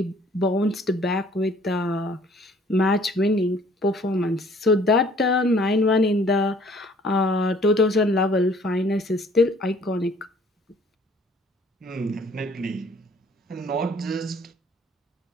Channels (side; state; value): both; normal; correlation 0.57